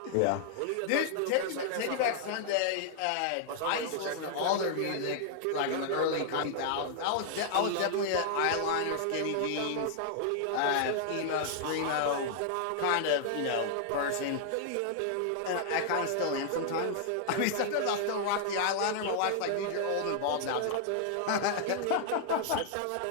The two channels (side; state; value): both; different; correlation -0.01